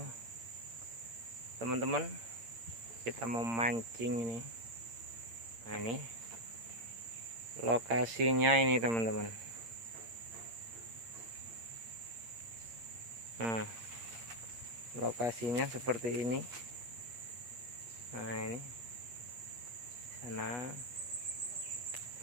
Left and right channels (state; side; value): late; left; 8.7 ms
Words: Teman-teman, kita mau mancing ini. Nah, ini lokasinya ini teman-teman. Nah, lokasinya seperti ini. Nah, ini sana